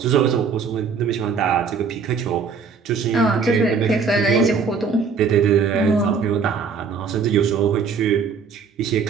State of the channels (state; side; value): quieter; left; 5.5 dB